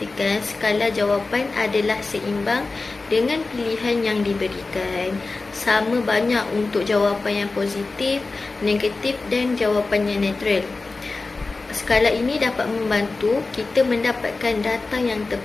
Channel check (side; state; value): right; quieter; 3.7 dB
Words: skala jawapan adalah seimbang dengan pilihan yang diberikan. Sama banyak untuk jawapan yang positif, negatif dan jawapan yang netral. Skala ini dapat membantu kita mendapatkan data yang